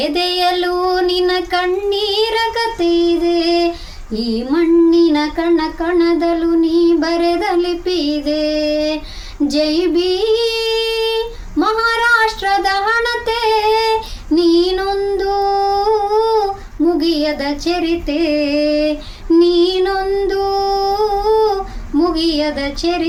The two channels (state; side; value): identical; both; correlation 1.00